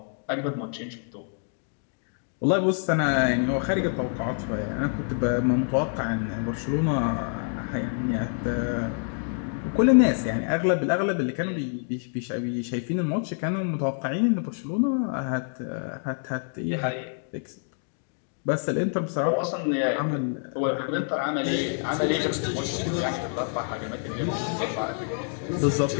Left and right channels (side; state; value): right; silent; 60 dB below the other